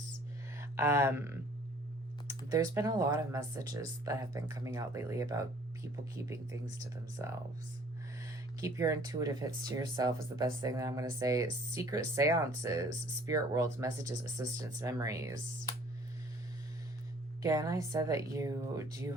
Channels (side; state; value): both; normal; correlation 0.55